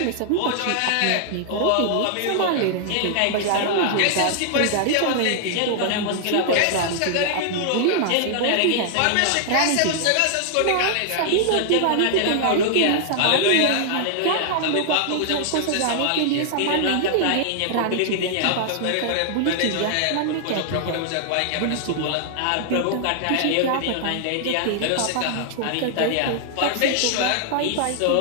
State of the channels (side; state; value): both; different; correlation -0.01